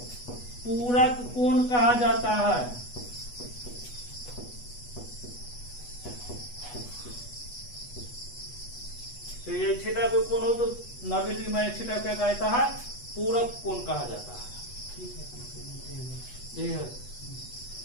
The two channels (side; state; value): right; late; 8.2 ms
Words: पूरक कोण कहा जाता है। तो ये थीटा पे कोण हो तो 90 डिग्री माइनस थीटा क्या कहता है, पूरक कोण कहा जाता है। ठीक है, ये है।